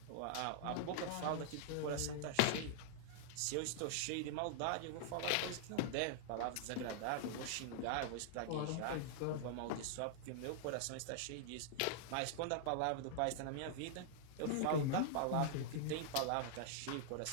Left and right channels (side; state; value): both; different; correlation -0.01